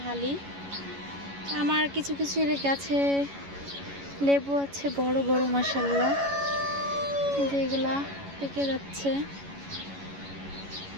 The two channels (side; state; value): left; late; 11 ms